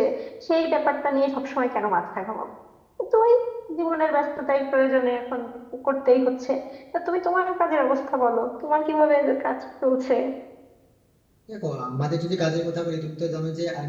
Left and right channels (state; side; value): identical; both; correlation 1.00